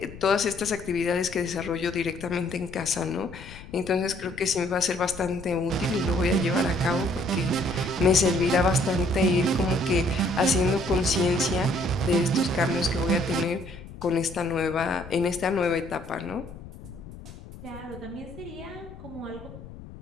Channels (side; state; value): left; noise; rumble, 15 dB below the sound